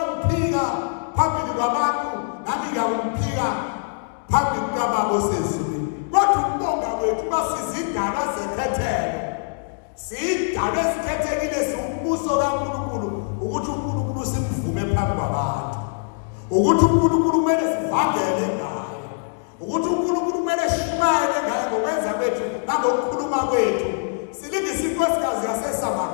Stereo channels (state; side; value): silent; right; digital silence